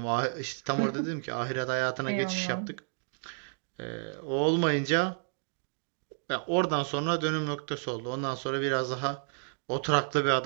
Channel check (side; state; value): left; silent; digital silence